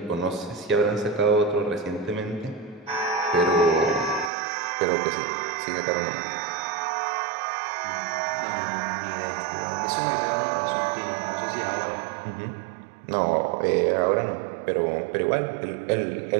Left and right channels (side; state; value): left; drops out; at 4.3 s